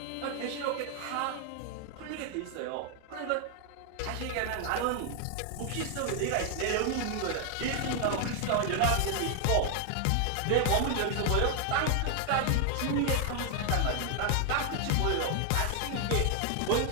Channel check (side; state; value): both; different; correlation 0.00